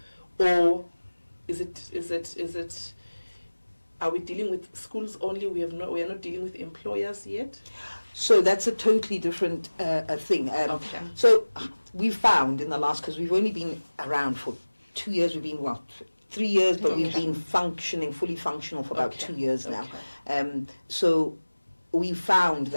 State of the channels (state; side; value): inverted; both; correlation -1.00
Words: or is it? Are we dealing with schools only? We are not dealing with employers yet. So that's a totally different thing. Okay. So we found in the last, because we've only been around for 2 years, we've been, 3 years, but we've been fully functional for about 2 years now. So we found